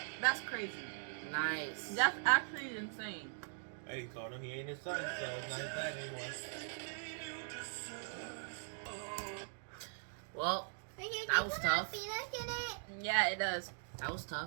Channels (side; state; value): left; silent; digital silence